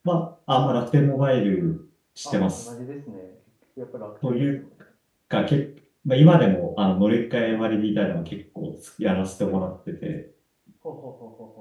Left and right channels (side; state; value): both; identical; correlation 1.00